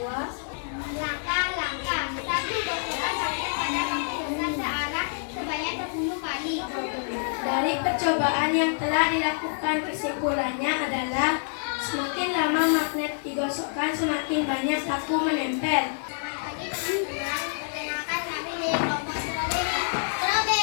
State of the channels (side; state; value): right; silent; digital silence